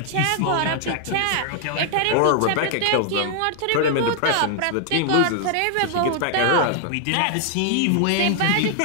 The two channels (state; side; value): different; both; correlation 0.00